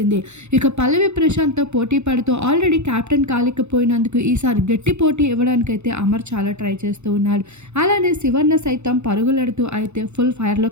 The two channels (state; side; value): late; left; 0.82 ms